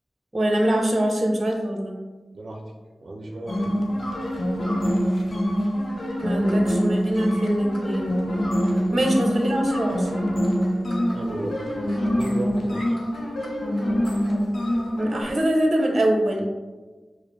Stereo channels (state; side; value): normal; both; correlation 0.96